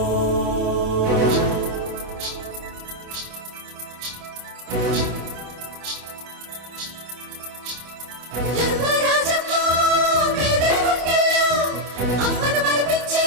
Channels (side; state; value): left; late; 27 ms